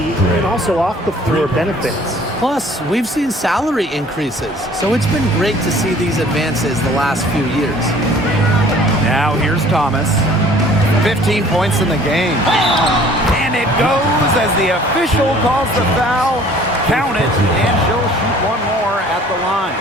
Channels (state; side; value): normal; both; correlation 0.53